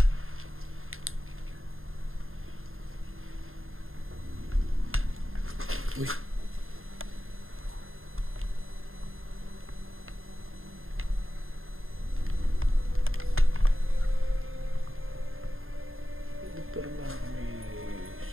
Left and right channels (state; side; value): late; left; 0.61 ms